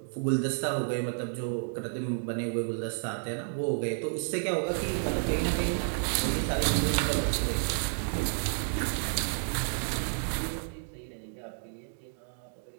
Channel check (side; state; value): left; silent; digital silence